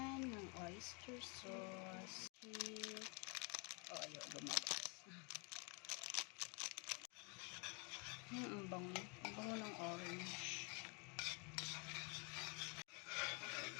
Ng oyster sauce. Oh, ayaw lumabas. Ang bango. Ang bango ng orange.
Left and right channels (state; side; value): quieter; right; 33.2 dB